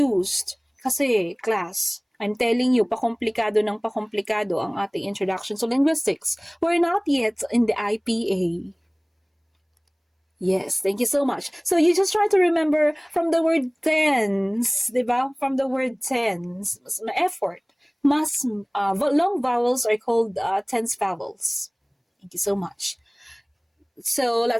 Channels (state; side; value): identical; both; correlation 1.00